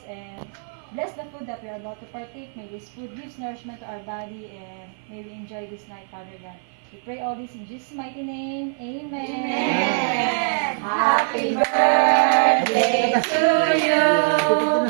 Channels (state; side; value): silent; left; 56 dB below the other